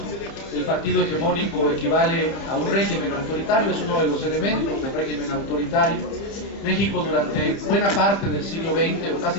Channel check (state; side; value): late; right; 30 ms